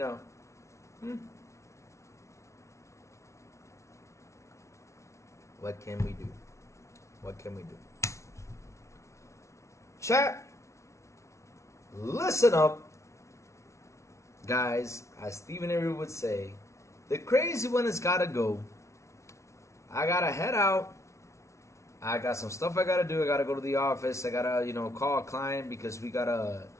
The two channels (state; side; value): late; right; 0.14 ms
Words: what can we do? What can we do? Chat, listen up. Guys, as Stephen Avery would say, the crazy one has got to go. I got to head out. I got some stuff I got to do. I got to go to the office. I got to, call a client because we got to